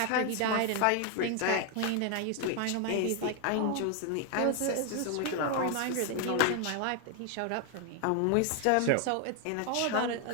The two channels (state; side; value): different; both; correlation 0.01